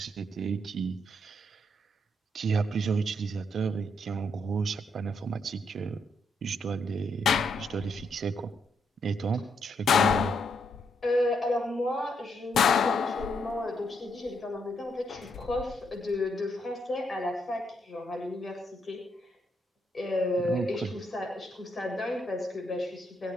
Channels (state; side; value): normal; both; correlation 0.76